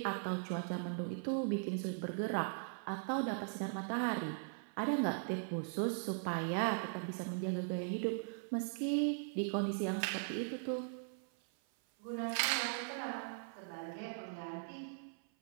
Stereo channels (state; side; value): silent; left; 51 dB below the other